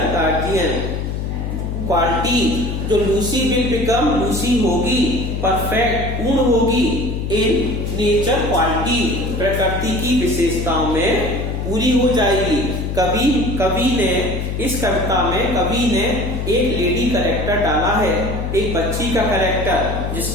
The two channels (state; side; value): noise; left; hum, 3 dB below the sound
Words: guardian quality, जो लूसी विल बिकम, लूसी होगी परफेक्ट, पूर्ण होगी इन नेचर क्वालिटी, प्रकृति की विशेषताओं में पूरी हो जाएगी। कवि ने इस कविता में कवि ने एक लेडी कैरेक्टर डाला है, एक बच्ची का कैरेक्टर